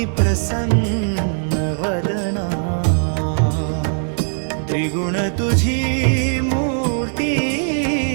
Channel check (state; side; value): silent; left; 66 dB below the other